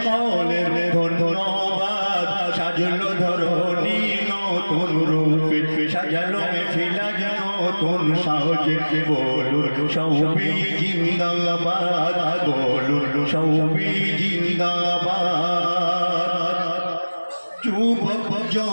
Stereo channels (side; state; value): both; inverted; correlation -1.00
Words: ধন্যবাদ। সাজলো ধরণী নতুন রূপে, সাজালো মেফিলা যেন নতুন সাজে। বলুন সবে জিন্দাবাদ, বলুন সবে জিন্দাবাদ। যুবক